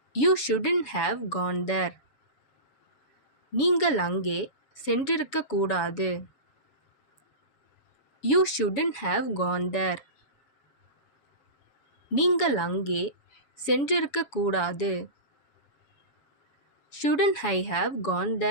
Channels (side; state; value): right; late; 7.1 ms